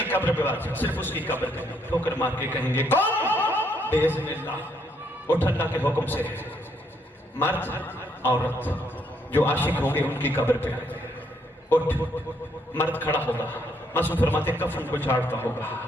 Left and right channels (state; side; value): normal; both; correlation 0.72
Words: قبر پہ بادشاہ، صرف اس کی قبر پہ ٹھوکر مار کے کہیں گے کون؟ باذن اللہ اٹھ اللہ کے حکم سے. مرد عورت جو عاشق ہوں گے ان کی قبر پہ اٹھ. مرد کھڑا ہوگا، معصوم فرماتے کفن کو جھاڑتا ہوگا،